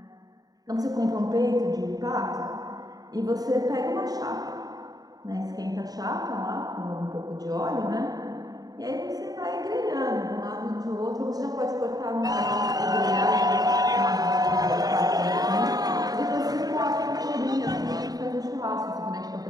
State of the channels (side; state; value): left; late; 0.18 ms